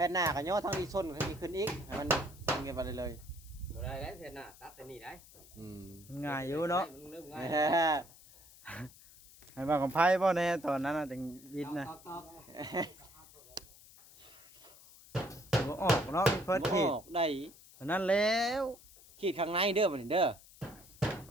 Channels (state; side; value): noise; left; hiss, 22 dB below the sound